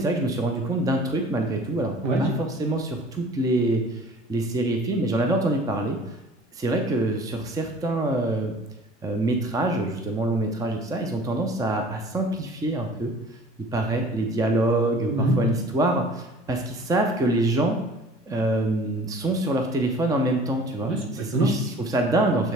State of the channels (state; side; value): normal; both; correlation 0.47